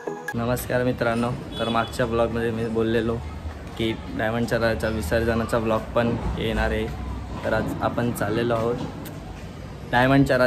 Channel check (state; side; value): identical; both; correlation 1.00